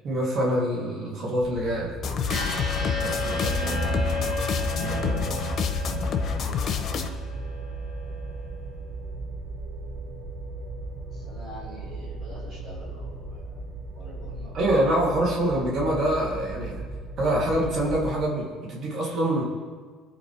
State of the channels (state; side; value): normal; both; correlation 0.59